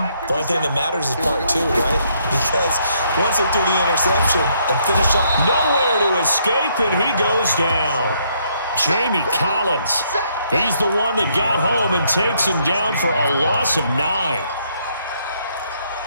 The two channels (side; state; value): both; inverted; correlation -0.71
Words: the only thing that matters is part 2, right? Because once they threw the interception and finished up. Nowhere to escape, and he goes down. Jamie Collins. He's the one that got home and takes him down for a loss of 9.